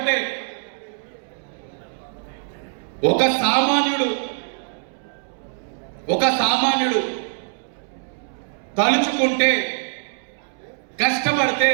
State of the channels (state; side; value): silent; left; 63 dB below the other